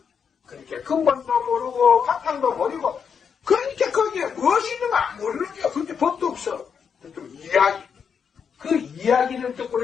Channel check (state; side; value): quieter; right; 6.8 dB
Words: 그러니까 근본도 모르고 바탕도 모르고 그러니까 거기에 무엇이 있는가 모르는 게 그렇게 법도 없어. 좀 이야기. 그 이야기를